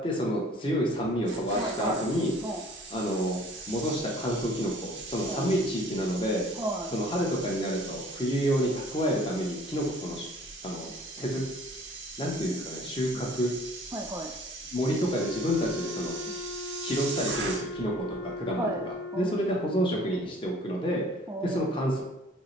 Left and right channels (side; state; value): both; normal; correlation 0.52